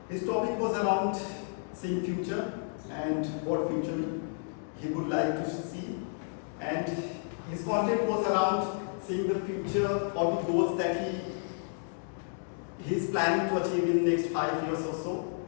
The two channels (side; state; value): right; silent; digital silence